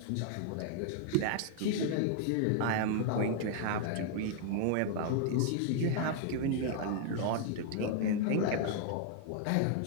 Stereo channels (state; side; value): different; both; correlation 0.00